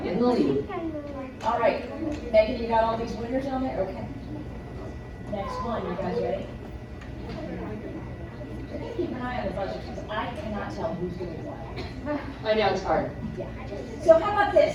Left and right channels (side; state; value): both; identical; correlation 1.00